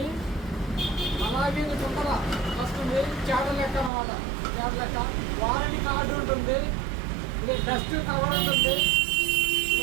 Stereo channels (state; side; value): drops out; left; at 3.9 s